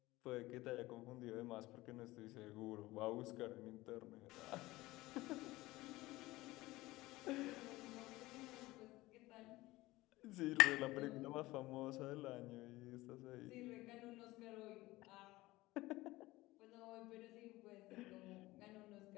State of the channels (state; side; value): quieter; right; 19.0 dB